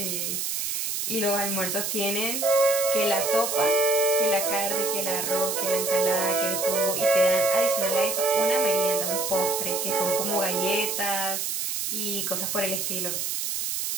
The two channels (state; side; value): noise; right; hiss, 2 dB below the sound